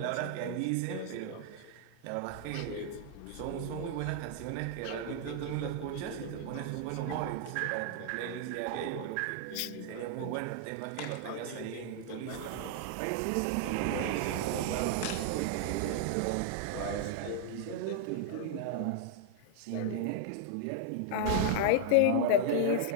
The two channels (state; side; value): different; both; correlation 0.00